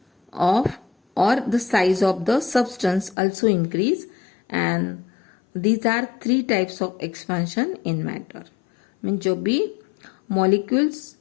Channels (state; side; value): drops out; right; at 3.2 s